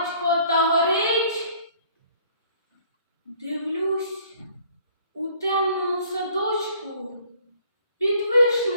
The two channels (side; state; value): both; inverted; correlation -0.58